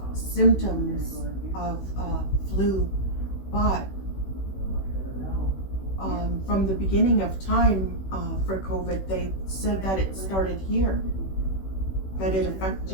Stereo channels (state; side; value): late; right; 16 ms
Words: symptoms of flu, but from the beginning of time for COVID, they said that it started here, that it affects